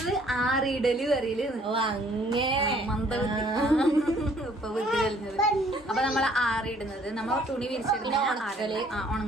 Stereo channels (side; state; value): both; normal; correlation 0.60